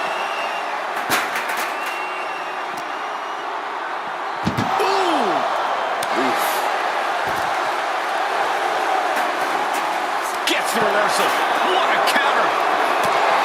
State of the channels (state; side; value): identical; both; correlation 1.00